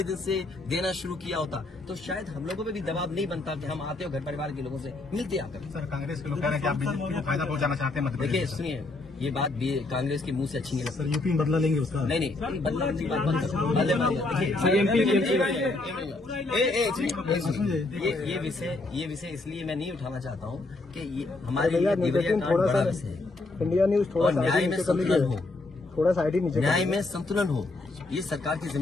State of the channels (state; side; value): quieter; right; 3.1 dB